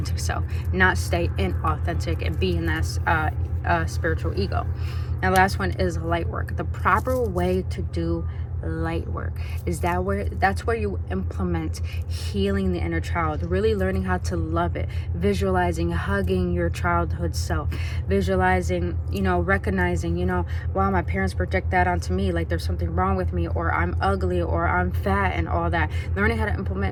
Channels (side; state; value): both; identical; correlation 1.00